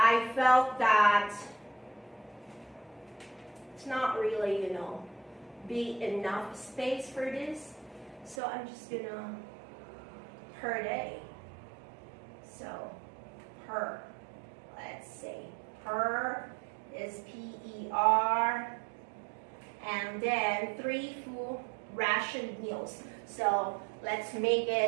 felt that it's not really, be enough space for this. So I'm just gonna per day. So per. Let's see. Per is P-E-R. And then 3 full ration meals. So let's make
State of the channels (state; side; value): drops out; left; at 8.4 s